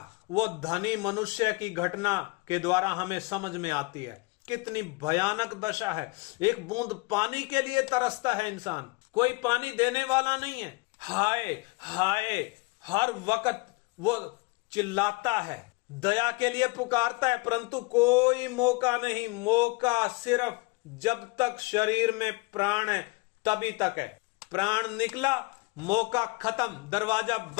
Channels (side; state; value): right; quieter; 26.7 dB